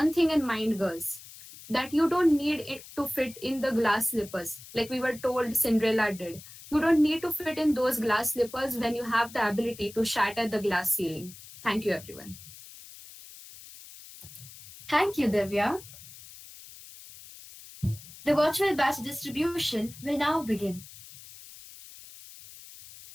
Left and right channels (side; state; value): left; noise; hiss, 17 dB below the sound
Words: thing in mind, girls, that you don't need it to fit in the glass slippers like we were told Cinderella did. You don't need to fit in those glass slippers when you have the ability to shatter the glass ceiling. Thank you, everyone. Thank you, Divya. The virtual batch distribution will now begin.